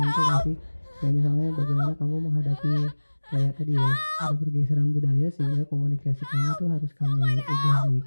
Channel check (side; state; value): both; inverted; correlation -1.00